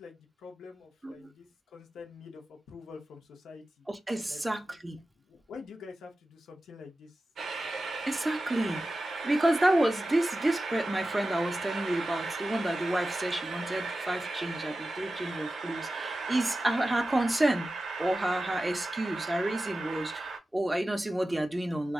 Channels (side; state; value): both; normal; correlation 0.94